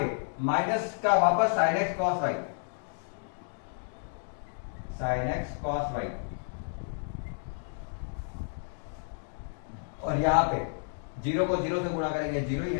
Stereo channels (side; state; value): right; silent; digital silence